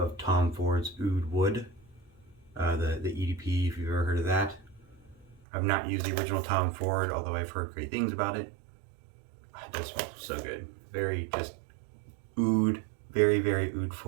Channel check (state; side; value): drops out; left; at 5.4 s